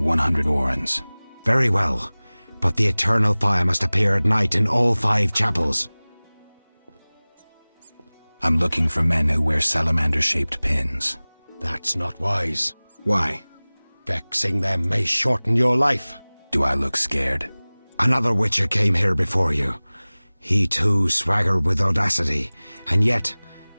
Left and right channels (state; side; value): inverted; both; correlation -1.00